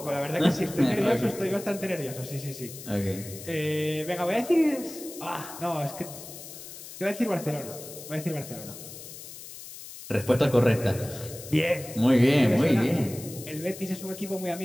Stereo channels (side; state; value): left; noise; hiss, 13 dB below the sound